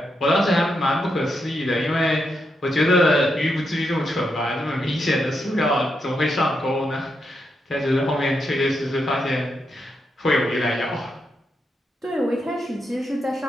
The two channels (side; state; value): both; normal; correlation 0.83